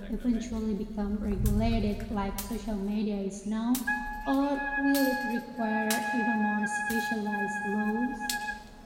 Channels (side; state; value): both; identical; correlation 1.00